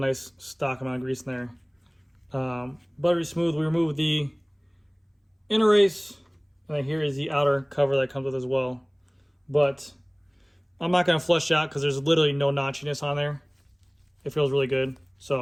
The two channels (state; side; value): identical; both; correlation 1.00